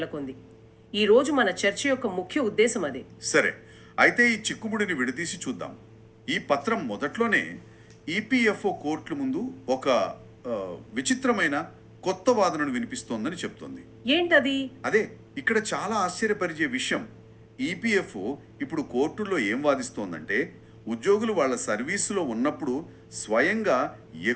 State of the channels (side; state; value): both; identical; correlation 1.00